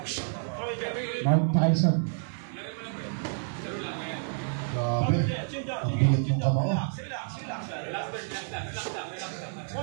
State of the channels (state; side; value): silent; left; 58 dB below the other